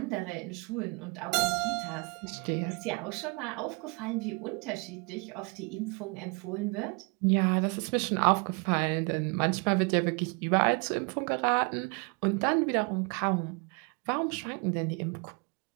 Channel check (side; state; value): left; quieter; 31.5 dB